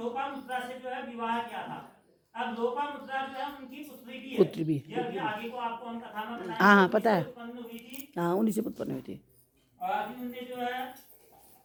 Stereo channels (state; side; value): identical; both; correlation 1.00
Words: से जो है विवाह किया था। अब लोपामुद्रा जो है उनकी पुत्री भी है। पुत्री भी ये अभी आगे को आपको हम कथा में बताएंगे। हाँ पता है। उत्पन्न हुई थी। हाँ उन्हीं से उत्पन्न हुई थी। और अभी उनने जो है